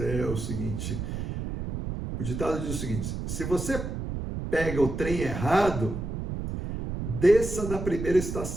o seguinte, o ditado diz o seguinte: se você pega o trem errado, desça na primeira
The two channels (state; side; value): noise; right; rumble, 5 dB below the sound